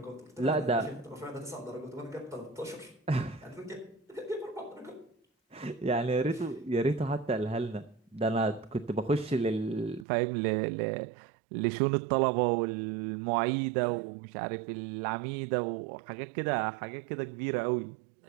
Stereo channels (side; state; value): left; drops out; at 10.1 s